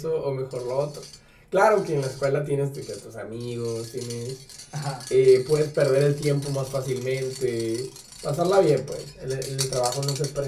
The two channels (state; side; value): identical; both; correlation 1.00